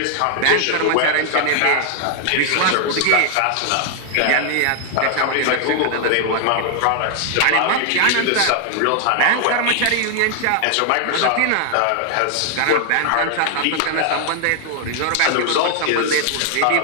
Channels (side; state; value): both; different; correlation 0.00